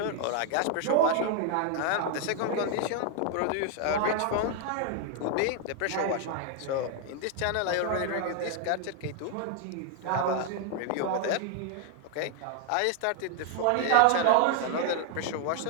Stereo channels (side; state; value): both; different; correlation 0.00